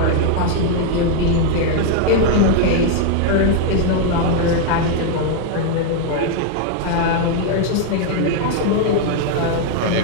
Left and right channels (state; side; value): different; both; correlation 0.00